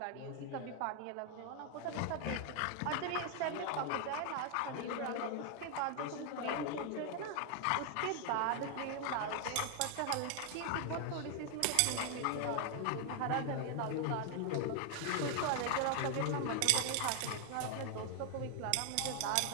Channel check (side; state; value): both; different; correlation 0.00